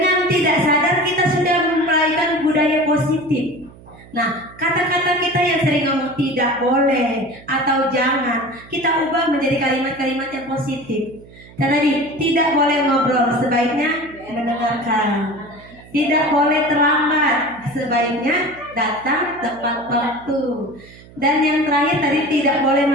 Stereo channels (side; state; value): right; noise; hum, 22 dB below the sound